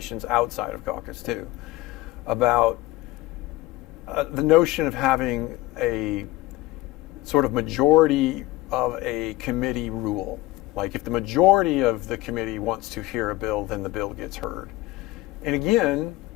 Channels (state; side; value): quieter; right; 18.1 dB